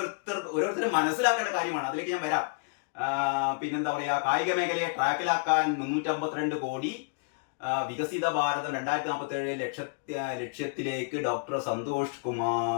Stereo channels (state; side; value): quieter; right; 36.2 dB